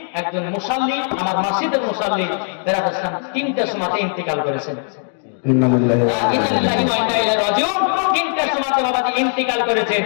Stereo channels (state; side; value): silent; right; 57 dB below the other